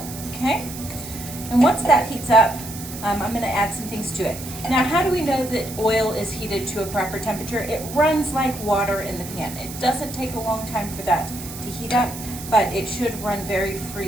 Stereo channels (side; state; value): right; noise; hiss, 12 dB below the sound